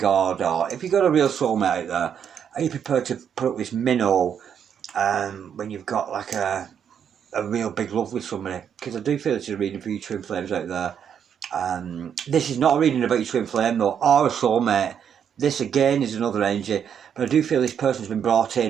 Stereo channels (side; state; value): left; quieter; 8.2 dB